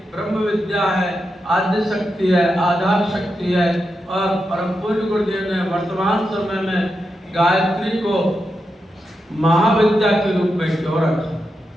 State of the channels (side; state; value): both; normal; correlation 0.87